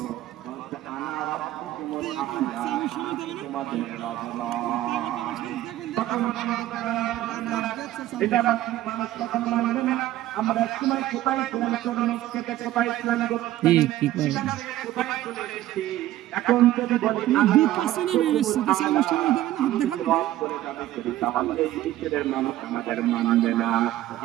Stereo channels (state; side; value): quieter; left; 14.4 dB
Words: আমরা সময় কোথায় ছিলাম, কোথায় ছিলাম, কি করে এখন যদি বলি তাহলে ঈশ্বরের মানুষ আমাদের মানবে না।